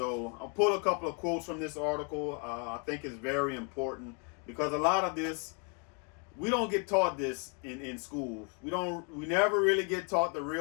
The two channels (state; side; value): quieter; right; 37.1 dB